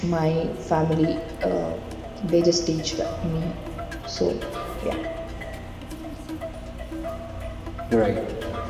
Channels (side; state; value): both; identical; correlation 1.00